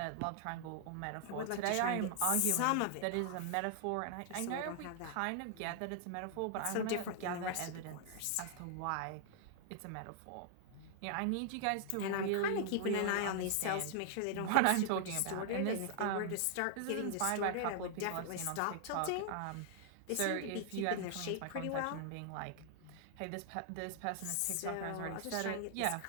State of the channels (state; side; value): different; both; correlation 0.00